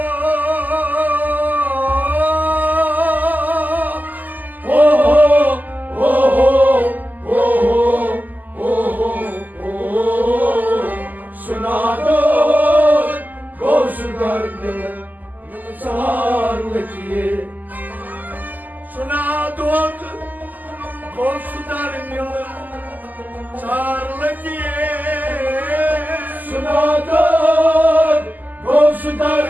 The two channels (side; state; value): left; late; 0.083 ms